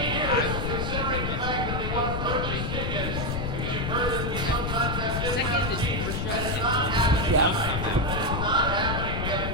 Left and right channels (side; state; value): left; noise; rumble, 2 dB below the sound